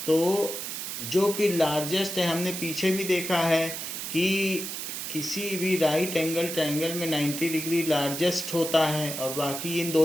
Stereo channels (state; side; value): noise; right; hiss, 6 dB below the sound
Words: तो जो कि लार्जेस्ट है, हमने पीछे भी देखा है कि किसी भी राइट एंगल ट्रायंगल में 90 डिग्री लार्जेस्ट होता है और बाकी इन